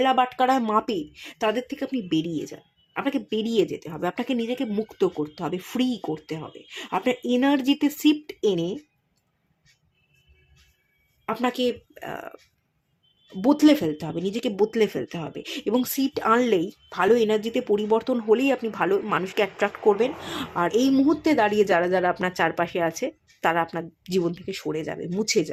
বাটকারায় মাপে, তাদের থেকে আপনি বেরিয়ে যান। আপনাকে বেরিয়ে যেতে হবে, আপনাকে নিজেকে মুক্ত করতে হবে, ফ্রি করতে হবে। আপনার এনার্জিতে শিফট এনে আপনাকে বদলে ফেলতে হবে, নিজেকে বদলে ফেলতে হবে। এবং শিফট আনলেই, ভালো এনার্জিতে পরিবর্তন হলেই আপনি ভালো মানুষকে অ্যাট্রাক্ট করবেন। আর এই মুহূর্তে দাঁড়িয়ে যারা যারা আপনার চারপাশে আছে, তারা আপনার জীবন থেকে সরে যাবে, মুছে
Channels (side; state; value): both; identical; correlation 1.00